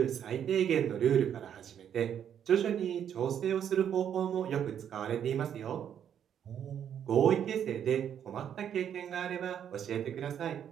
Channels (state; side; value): quieter; left; 9.1 dB